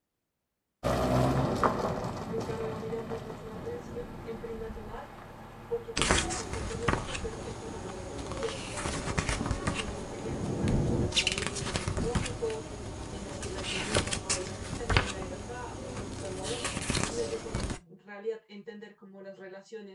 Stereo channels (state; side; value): identical; both; correlation 1.00